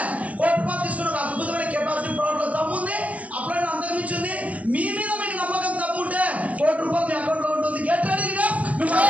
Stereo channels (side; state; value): left; late; 0.068 ms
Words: కోటి రూపాయలు తీసుకున్న ఒక అద్భుతమైన కెపాసిటీ ప్రోడక్ట్లో దమ్ముంది. అప్పుడైనా అంతకుమించింది. మీ మీద మీకు నమ్మకం దమ్ముంటే 1 కోటి రూపాయలు మీ అకౌంట్లో ఉంటుంది. Get ready.